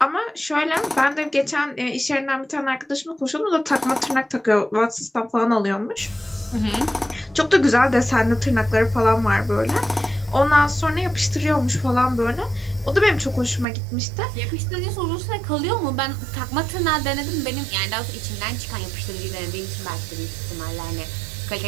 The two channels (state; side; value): drops out; left; at 13.7 s